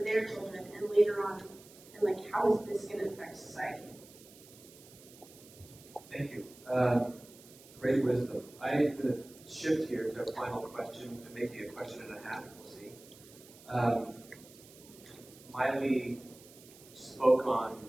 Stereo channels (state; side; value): noise; right; hiss, 21 dB below the sound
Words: their children, and later on, and like, how is this going to affect society? Thank you. Great wisdom. I'm going to shift here to a final question, and maybe a question and a half, we'll see. Miley spoke on